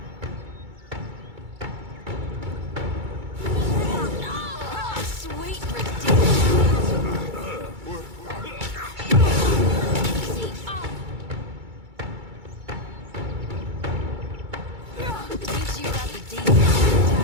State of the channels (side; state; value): left; late; 2.3 ms